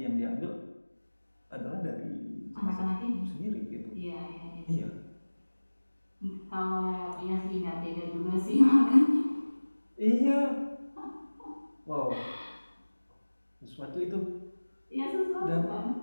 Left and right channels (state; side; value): inverted; both; correlation -1.00